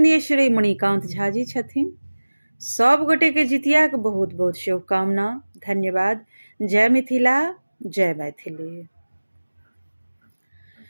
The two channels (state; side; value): inverted; both; correlation -1.00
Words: श्री मणिकांत झा जी छथिन। सब गोटे के जितिया के बहुत बहुत शुभकामना, धन्यवाद। जय मिथिला, जय मैथिली।